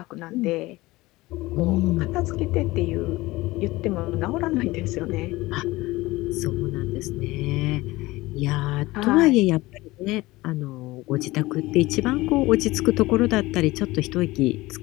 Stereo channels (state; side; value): quieter; right; 19.7 dB